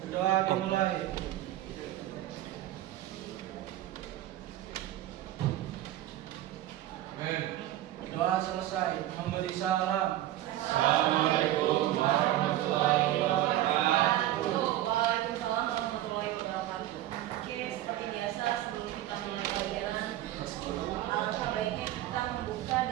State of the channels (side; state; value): left; quieter; 14.0 dB